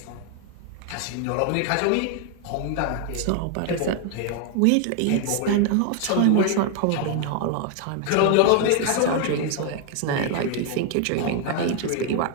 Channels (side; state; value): both; different; correlation 0.00